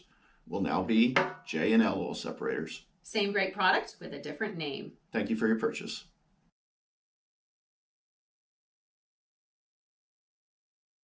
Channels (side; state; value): both; identical; correlation 1.00